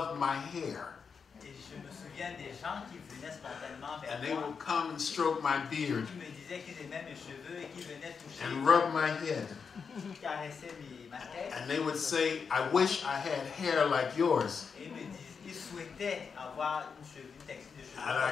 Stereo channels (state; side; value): quieter; right; 5.9 dB